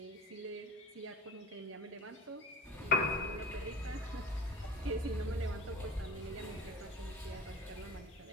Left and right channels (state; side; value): normal; both; correlation 0.38